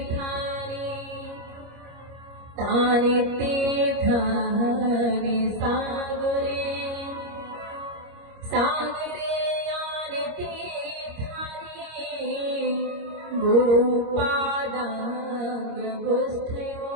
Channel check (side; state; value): left; late; 25 ms